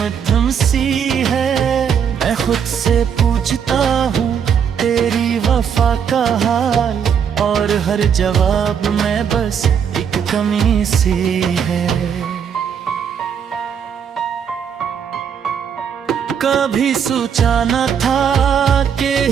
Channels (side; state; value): left; quieter; 7.6 dB